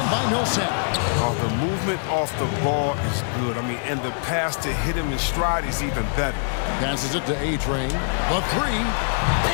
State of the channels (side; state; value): right; silent; 63 dB below the other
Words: by Millsap. Oh, the movement off the ball is good. I mean, and the pass to hit him in stride is even better. Passes it to A-Train. The three,